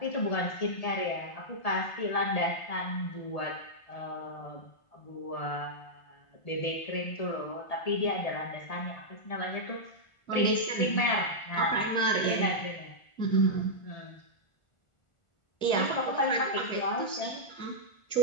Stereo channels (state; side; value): late; right; 1.4 ms